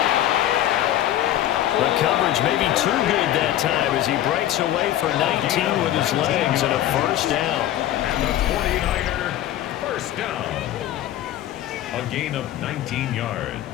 The coverage may be too good that time as he breaks away for 19 with his legs and a first down. And the 49er first down. A gain of 19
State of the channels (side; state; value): right; quieter; 12.8 dB